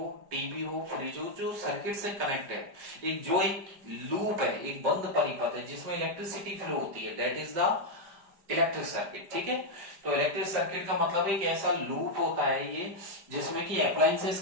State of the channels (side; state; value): left; late; 5.0 ms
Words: टीवी हो, फ्रिज हो, जो सर्किट से कनेक्ट है, एक लूप है, एक बंद परिपथ है जिसमें इलेक्ट्रिसिटी फ्लो होती है, that is the electric circuit, ठीक है। तो इलेक्ट्रिक सर्किट का मतलब एक ऐसा लूप होता है ये जिसमें कि अप्लायंसेस